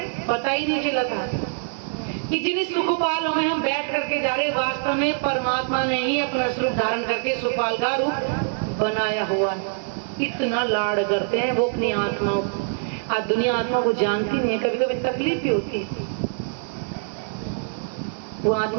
पता ही नहीं चला था कि जिन सुखपालों में हम बैठ करके जा रहे, वास्तव में परमात्मा ने ही अपना स्वरूप धारण करके सुखपाल का रूप बनाया हुआ है। इतना लाड करते हैं वो अपनी आत्माओं को। आज दुनिया आत्मा को जानती नहीं है, कभी कभी तकलीफ भी होती है। वो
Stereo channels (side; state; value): left; silent; digital silence